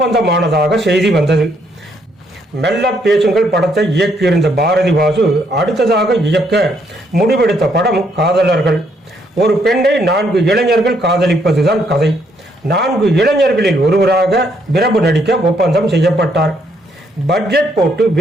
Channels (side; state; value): both; normal; correlation 0.72